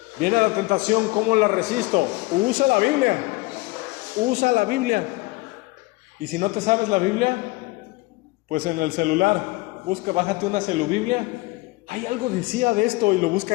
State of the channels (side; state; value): right; quieter; 22.2 dB